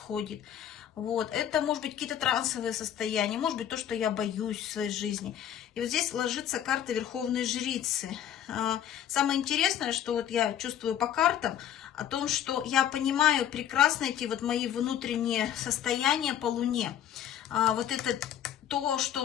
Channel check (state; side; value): quieter; right; 10.2 dB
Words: Вот. Это может быть какие-то трансовые состояния, может быть то, что я боюсь в своей жизни. И вот здесь ложится карта Верховной Жрицы. Самое интересное, что вот я чувствую по картам, о том, что я понимаю прекрасно эти вот мои внутренние состояния по Луне. Вот это то,